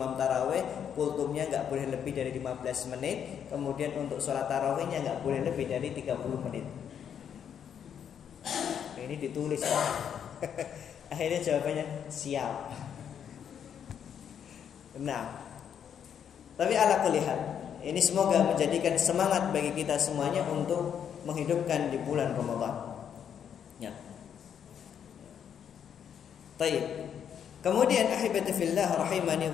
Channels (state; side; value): quieter; right; 8.4 dB